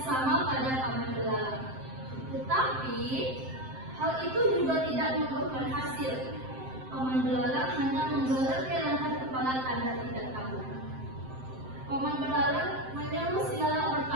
sama pada paman belalang. Tetapi hal itu juga tidak membuahkan hasil. Paman belalang hanya menggeleng-gelengkan kepala tanda tidak tahu. Paman belalang menyuruh si lalat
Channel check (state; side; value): late; left; 7.7 ms